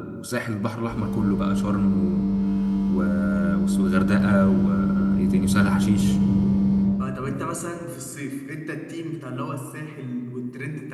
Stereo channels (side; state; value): both; identical; correlation 1.00